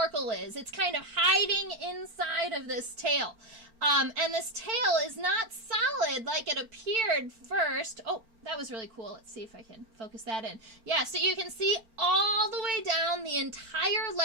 is. It's kind of hiding inside of this tail. And this tail is not solid like it appeared first. Oh, that was really cool. Let's see if I can focus that in. Yeah, so you can see all the way down the entire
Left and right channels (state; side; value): late; left; 4.4 ms